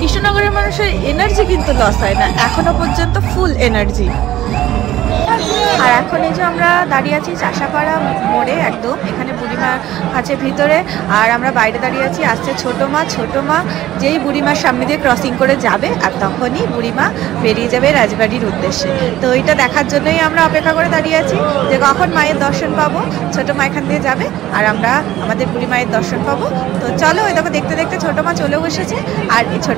মানুষের এনার্জি কিন্তু লস হয় না, এখনো পর্যন্ত ফুল এনার্জি। আর এখন এই যে আমরা দাঁড়িয়ে আছি চাষাপাড়া মোড়ে, একদম এখানে বুড়িমা আছে ভিতরে, আর আমরা বাইরে দাঁড়িয়ে আছি। আসছে ছোটো মা যেই বুড়িমার সামনে দিয়ে ক্রসিং করে যাবে, আর তখনই বুড়িমা বেরিয়ে যাবে রাজবাড়ির উদ্দেশ্যে। তো এইটা দেখার জন্যই আমরা অপেক্ষা করে দাঁড়িয়ে আছি, যে কখন মায়ের দর্শন পাবো। ছোটো মা এখান দিয়ে যাবে আর আমরা আমাদের বুড়ি মায়ের দর্শন পাবো। তো চলো ওই দেখো দেখতে দেখতে ছোটো মা চলেও এসেছে। আর এই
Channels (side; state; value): left; quieter; 14.1 dB